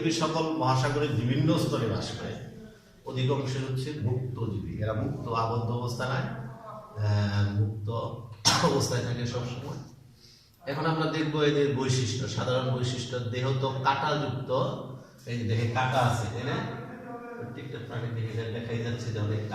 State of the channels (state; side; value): identical; both; correlation 1.00